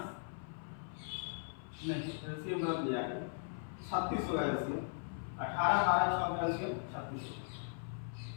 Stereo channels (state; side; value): silent; right; 52 dB below the other